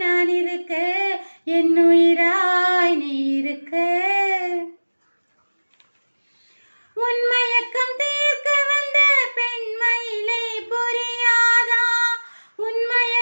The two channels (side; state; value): both; inverted; correlation -1.00